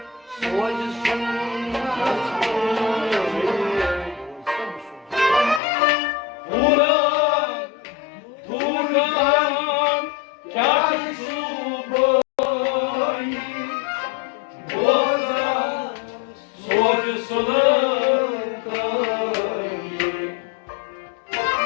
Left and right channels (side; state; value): right; drops out; at 5.6 s